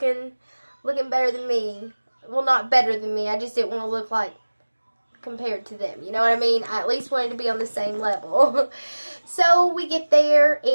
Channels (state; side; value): inverted; both; correlation -1.00